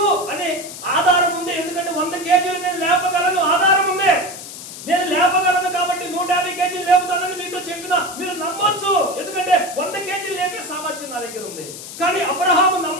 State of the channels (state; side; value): noise; left; hiss, 12 dB below the sound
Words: అని ఆధారం ఉంది. ఎందుకంటే 100 కేజీలు నేను లేపగలను, ఆధారం ఉంది. నేను లేపగలను కాబట్టి 150 కేజీలు లేపుతానని మీతో చెప్పినా మీరు నమ్మొచ్చు, ఎందుకంటే 100 కేజీలు లేపే సామర్థ్యం నా దగ్గర ఉంది. కానీ అబ్రహాము